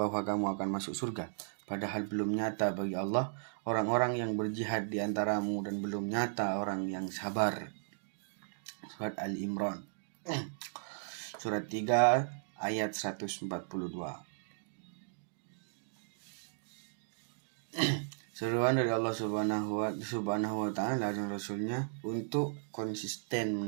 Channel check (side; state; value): left; silent; digital silence